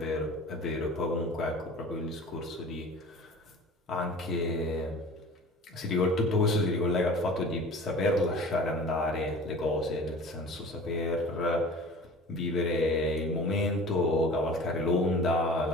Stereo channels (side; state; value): both; normal; correlation 0.42